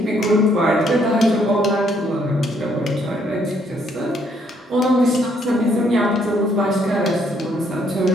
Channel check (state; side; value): normal; both; correlation 0.69